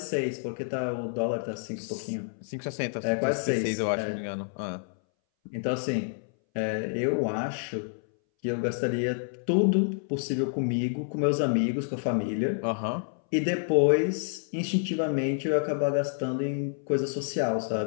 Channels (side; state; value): right; silent; 59 dB below the other